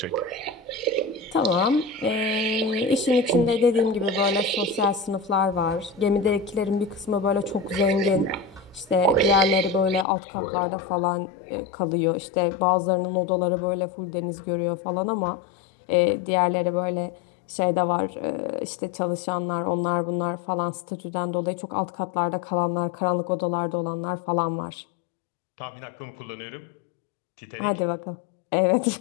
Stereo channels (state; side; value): drops out; right; at 10.1 s